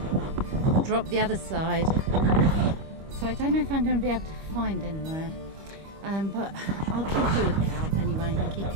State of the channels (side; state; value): left; late; 25 ms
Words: drop the other side. So I don't know if I'm going to be able to find anywhere, but I'll keep a lookout anyway and keep